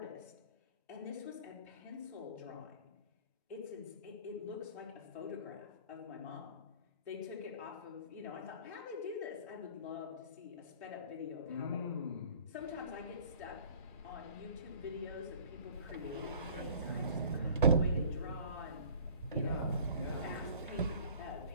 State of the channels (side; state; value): both; inverted; correlation -0.49